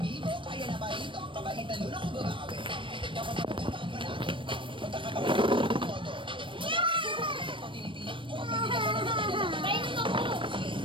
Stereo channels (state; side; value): late; left; 0.25 ms